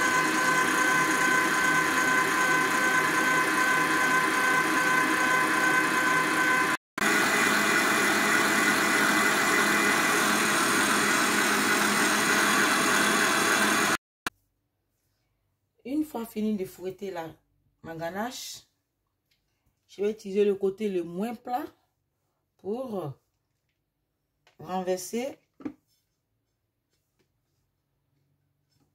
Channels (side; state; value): both; identical; correlation 1.00